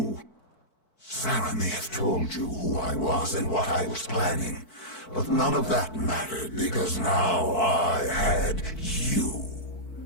Sarah may have told you who I was and what I was planning, but none of that mattered because now I had you.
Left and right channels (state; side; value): late; right; 4.5 ms